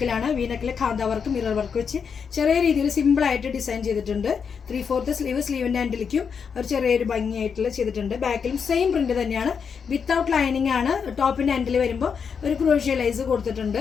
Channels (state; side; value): quieter; right; 6.4 dB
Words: വി നെക്കിൽ ഖാന്ത വർക്ക്, മിറർ വർക്ക് വെച്ച് ചെറിയ രീതിയിൽ സിമ്പിളായിട്ട് ഡിസൈൻ ചെയ്തിട്ടുണ്ട്. 3/4 സ്ലീവ്, സ്ലീവിൻ്റെ ഹാൻഡിലേക്കും ഒരു ചെറിയൊരു ഭംഗിയായിട്ടുള്ള ചെയ്തിട്ടുണ്ട്. ബാക്കിലും സെയിം പ്രിന്റ് തന്നെയാണ്. വിത്തൗട്ട് ലൈനിങ് ആണ്. ടോപ്പിൻ്റെ ഹാൻഡിൽ വരുമ്പോൾ ഒരു ക്രോഷ്യ ലേസ്